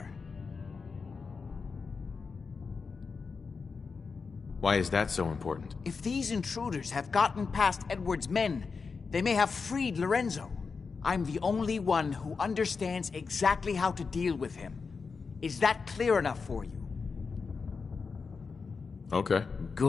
Why is that so important? If these intruders have gotten past Edward's men, they may have freed Lorenzo. I'm the only one who understands exactly how to deal with him. Is that clear enough for you? Okay.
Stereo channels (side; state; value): right; quieter; 5.0 dB